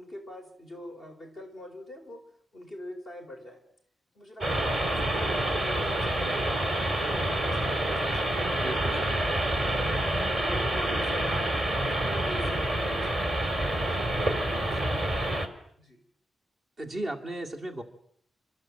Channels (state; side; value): normal; both; correlation 0.84